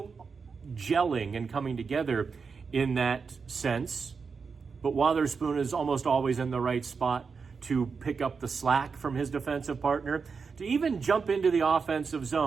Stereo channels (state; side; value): quieter; left; 5.3 dB